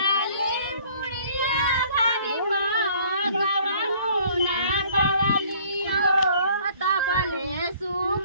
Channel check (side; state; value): both; inverted; correlation -0.56